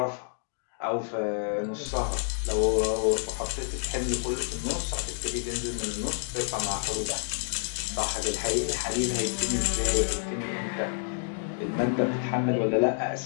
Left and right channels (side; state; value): right; silent; digital silence